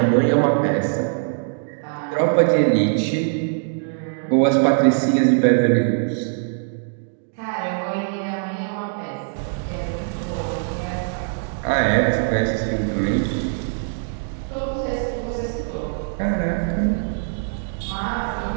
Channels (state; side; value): silent; left; digital silence